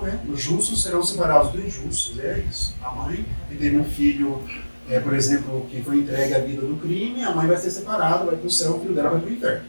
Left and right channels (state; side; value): inverted; both; correlation -1.00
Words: né? Os justos serão separados dos injustos, é isso. A mãe que teve um filho, por exemplo, que foi entregue à vida do crime, a mãe vai ser separada, vai para o céu, o filho dela vai para o inferno.